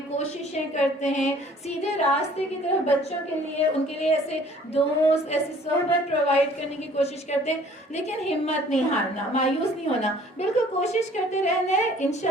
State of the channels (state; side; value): normal; both; correlation 0.54